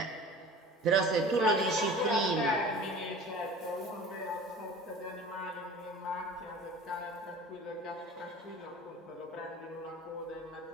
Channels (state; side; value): normal; both; correlation 0.41